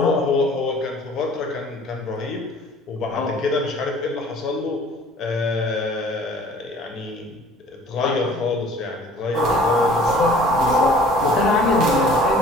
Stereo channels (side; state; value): both; normal; correlation 0.50